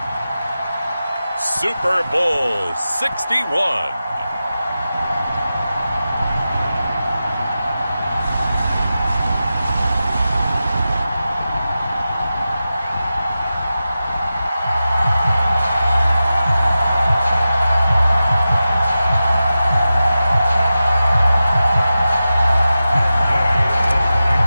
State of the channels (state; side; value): inverted; both; correlation -0.93